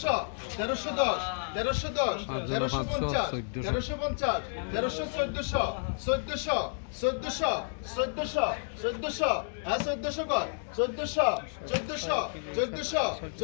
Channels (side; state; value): right; silent; digital silence